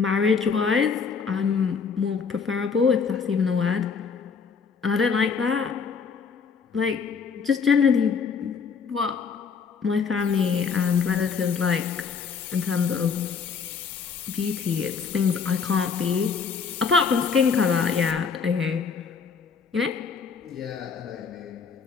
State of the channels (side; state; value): right; quieter; 5.8 dB